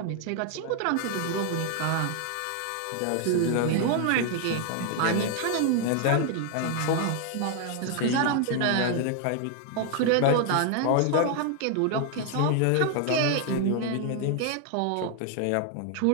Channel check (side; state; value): both; different; correlation 0.00